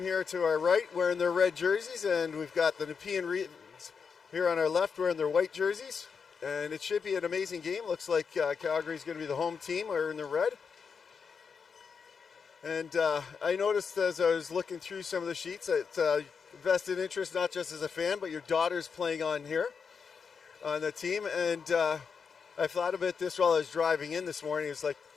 to our right wearing their red jerseys, and we've got the Nepean here on our left wearing their white jerseys. And it should be an amazing game. Looks like Calgary's going to be the home team wearing the red. And I noticed as I was looking through some of the sheets that vested interest, not just as a fan, but your daughter's playing on here on the team. And I thought about this while I was driving in this morning. It's like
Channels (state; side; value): quieter; right; 5.9 dB